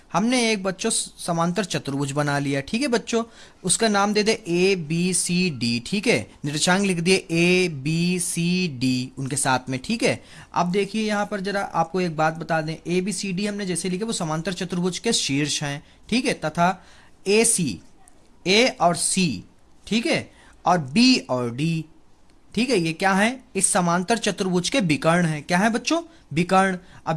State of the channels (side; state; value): both; identical; correlation 1.00